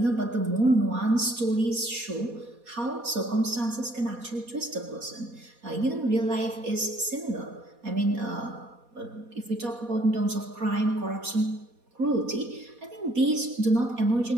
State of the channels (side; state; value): left; late; 4.2 ms